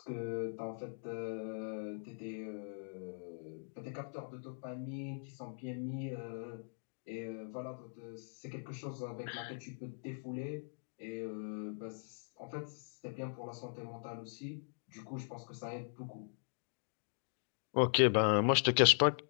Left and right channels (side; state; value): right; silent; digital silence